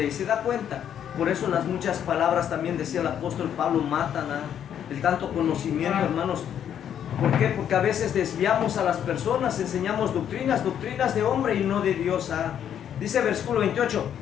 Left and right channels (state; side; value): quieter; right; 9.4 dB